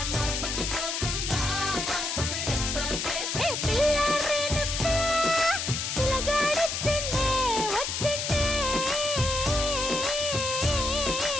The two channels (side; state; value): left; noise; hiss, 2 dB below the sound